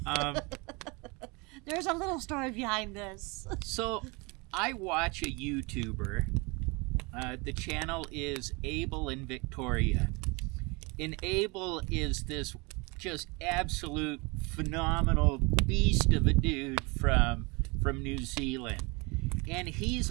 There's a little story behind this. So I watch a YouTuber. The channel is Abel and Victoria. And Abel is this just absolute phenomenal beast of a dude from New Zealand. And he's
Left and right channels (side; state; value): left; quieter; 27.9 dB